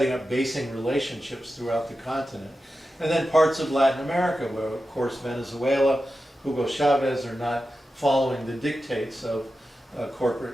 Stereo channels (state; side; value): normal; both; correlation 0.92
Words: up basing relationships throughout the continent. And then parts of Latin America, where of course Venezuela, Hugo Chavez are not following the dictates of